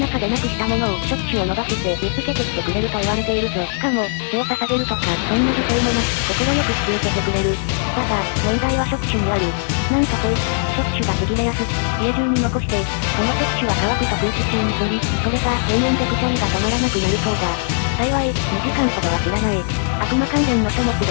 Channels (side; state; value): right; silent; 66 dB below the other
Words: でなくしたものを触手を伸ばして見つけてきてくれると言われているぞ。しかも、血を捧げるとか、そんな犠牲もなく、心よく引き受けてくれる。だが、問題は触手にある。なんとこいつ、触手がちぎれやすく、家中に残して、その触手は乾くと空気中に飛び、それが永遠でくしゃみが止まらなくなるそうだ。幸い、2時間ほどは知らない。悪魔関連の書物で